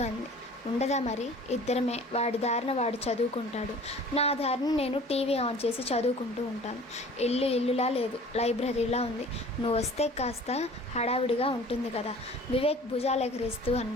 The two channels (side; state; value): both; normal; correlation 0.46